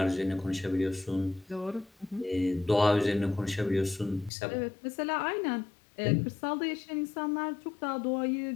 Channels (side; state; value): right; drops out; at 4.3 s